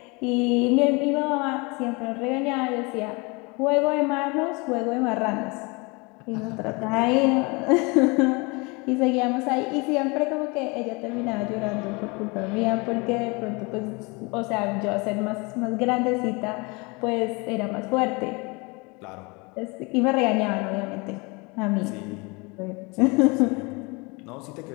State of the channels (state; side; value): quieter; right; 28.0 dB